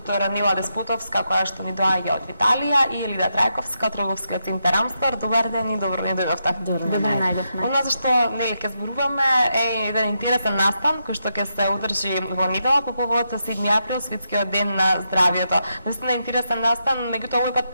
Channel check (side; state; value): both; inverted; correlation -0.83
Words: Нила Деспотовска, која што ни доаѓа од Италија, и Елида Трајковска од Трговскиот центар Амстор. Добар ден и добро ни дојдовте. Добро најдовме. Она за што нели ќе зборуваме е еден интересен настан кој што ќе се одржи во недела по повод 7 април, Светскиот ден на здравието. Наистина интересен настан, меѓутоа овој пат